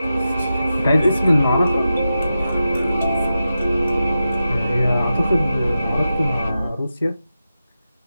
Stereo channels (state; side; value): inverted; both; correlation -0.91